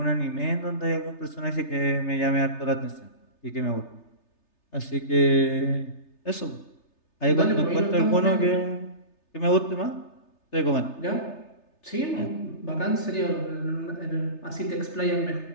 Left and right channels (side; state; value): right; late; 3.3 ms